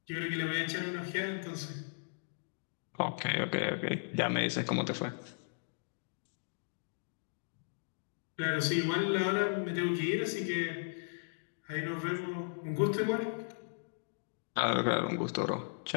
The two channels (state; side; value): silent; right; digital silence